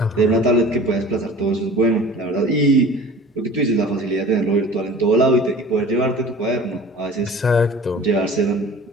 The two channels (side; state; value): both; normal; correlation 0.42